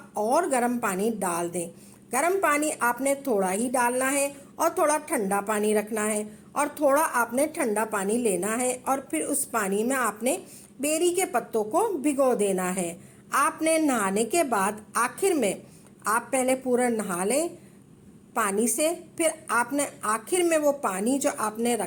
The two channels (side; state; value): both; identical; correlation 1.00